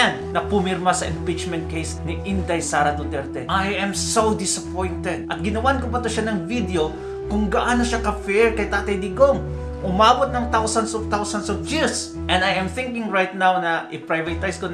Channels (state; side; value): identical; both; correlation 1.00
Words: na pumirma sa impeachment case ni Inday Sara Duterte. I am so disappointed. At ginawan ko pa to siya ng video kung gaano siya ka-fair kay Tatay Digong. Umabot ng thousands of views. And I am thinking right now na i-privatize ko